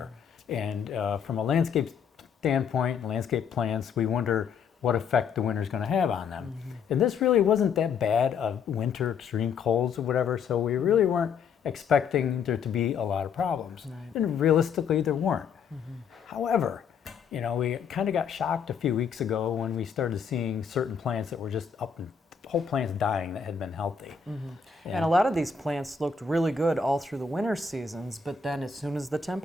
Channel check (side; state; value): right; quieter; 6.3 dB